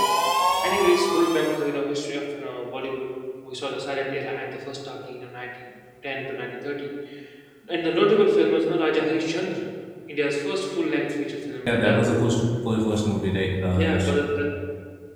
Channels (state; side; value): identical; both; correlation 1.00